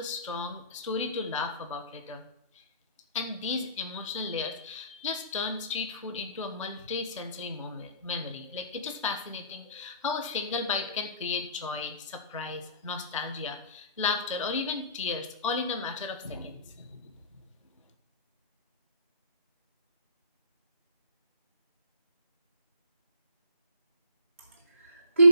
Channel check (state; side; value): inverted; both; correlation -0.47